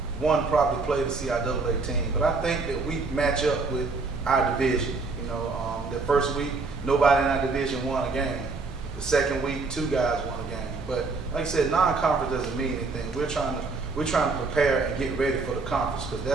probably played the CIAA team, but I think that we match up with our division. The first week, nobody in our division won a game. The second week, 2 guys won a game. But like I said, non-conference doesn't mean anything. We're trying to prepare and get ready for the conference because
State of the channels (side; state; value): left; quieter; 4.0 dB